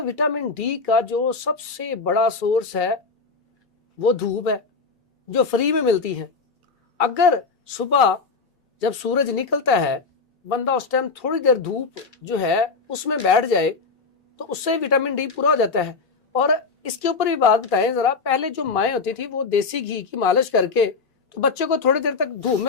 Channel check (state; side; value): quieter; right; 4.5 dB